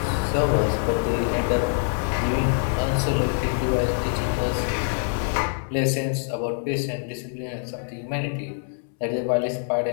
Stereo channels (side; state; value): right; silent; 62 dB below the other